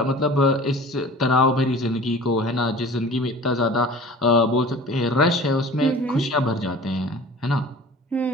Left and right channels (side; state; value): both; normal; correlation 0.42